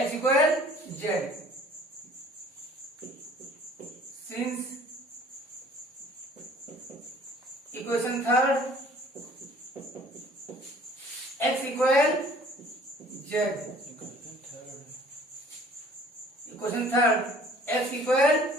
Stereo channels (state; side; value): normal; both; correlation 0.53